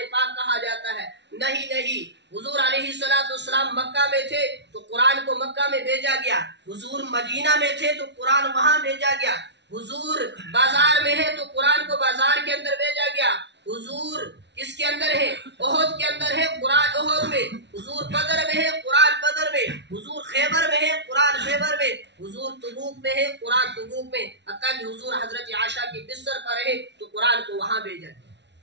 پاک کہا جاتا ہے. نہیں, حضور علیہ السلام مکہ میں تھے تو قرآن کو مکہ میں بھیجا گیا, حضور مدینہ میں تھے تو قرآن وہاں بھیجا گیا, حضور بازار میں ہے تو قرآن کو بازار کے اندر بھیجا گیا, حضور کس کے اندر ہے؟ احد کے اندر ہے, قرآن احد میں, حضور بدر میں ہے, قرآن بدر میں, حضور خیبر میں ہے, قرآن خیبر میں, حضور تبوک میں ہے, قرآن تبوک میں, حتیٰ کہ حضور حضرت عائشہ کی بستر پر رہے تو قرآن کو وہاں بھیجا گیا.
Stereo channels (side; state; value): left; late; 0.51 ms